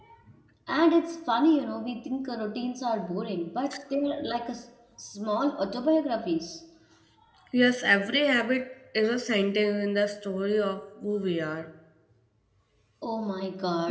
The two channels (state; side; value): identical; both; correlation 1.00